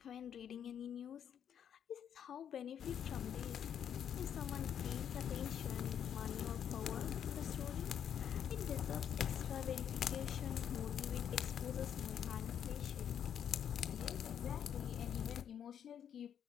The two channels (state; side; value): quieter; right; 8.9 dB